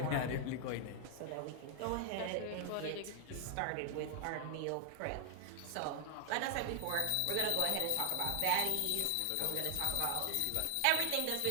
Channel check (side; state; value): both; different; correlation 0.00